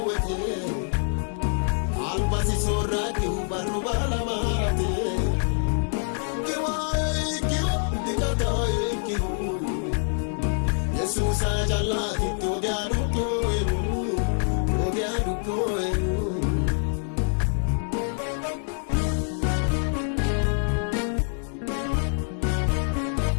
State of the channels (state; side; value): silent; right; digital silence